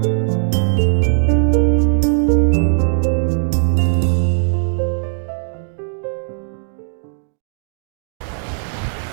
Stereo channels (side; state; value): left; silent; digital silence